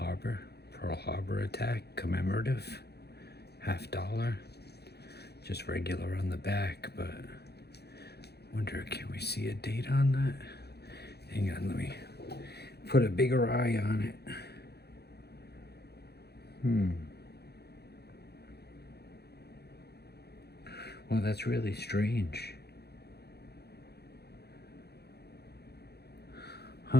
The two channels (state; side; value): late; right; 0.48 ms